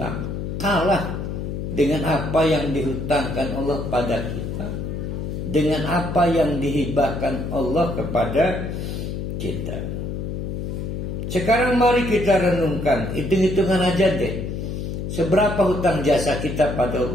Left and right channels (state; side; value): noise; left; hum, 4 dB below the sound